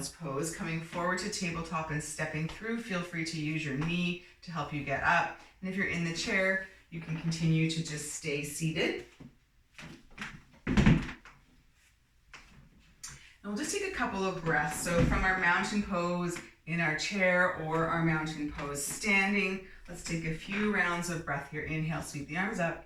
pose, coming forward to tabletop and stepping through, feel free to use your knee to help you get up. And if you're in the chair, you can continue to just stay seated. And we'll just take a couple of breaths. So from our mountain pose in our chair or our mountain pose standing, let's take a few rounds of breath here. Inhale, sweep the arms up.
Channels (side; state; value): both; identical; correlation 1.00